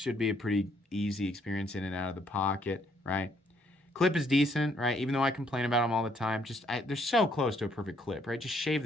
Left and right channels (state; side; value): normal; both; correlation 0.69